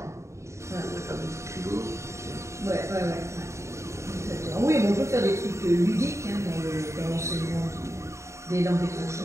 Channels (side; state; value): left; late; 0.14 ms